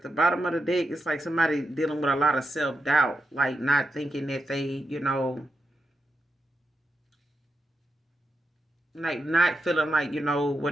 the bottom of the deck, it's like somebody dealing with a lot of self-doubt, like not thinking that they, you know, like not feeling like, you know,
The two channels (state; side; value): normal; both; correlation 0.86